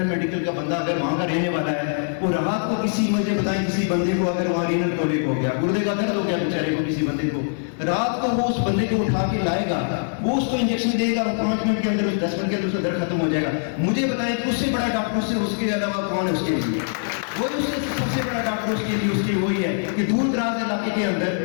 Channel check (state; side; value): silent; right; 61 dB below the other